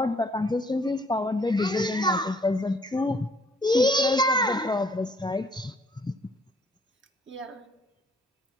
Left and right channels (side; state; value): both; normal; correlation 0.62